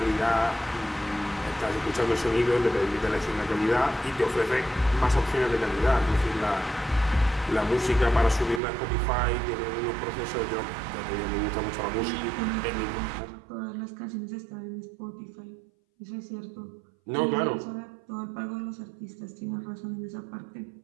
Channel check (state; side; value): drops out; left; at 8.6 s